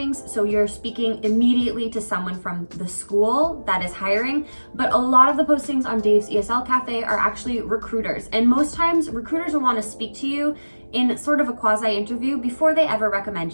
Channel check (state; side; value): inverted; both; correlation -1.00